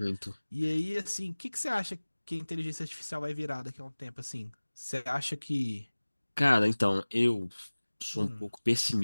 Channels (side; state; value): both; inverted; correlation -1.00